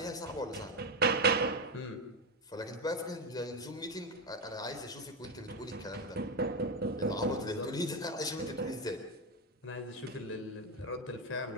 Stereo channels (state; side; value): normal; both; correlation 0.10